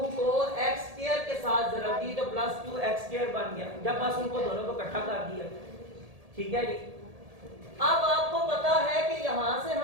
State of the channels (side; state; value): left; late; 1.8 ms